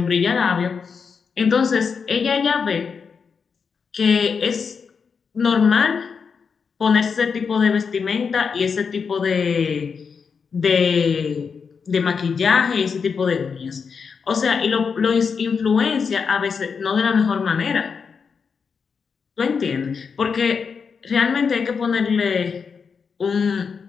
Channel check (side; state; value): right; quieter; 5.8 dB